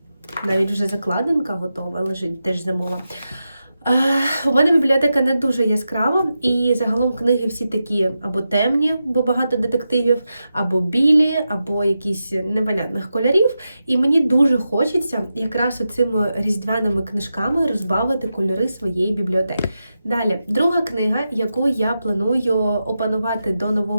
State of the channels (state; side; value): inverted; both; correlation -0.89